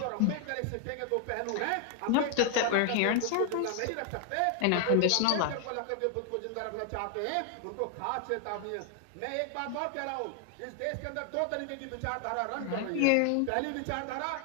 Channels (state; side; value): different; both; correlation 0.00